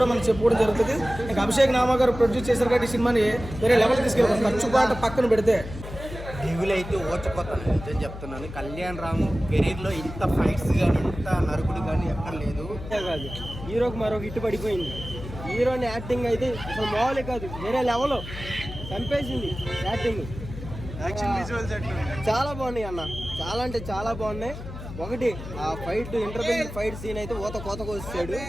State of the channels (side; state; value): left; noise; hum, 11 dB below the sound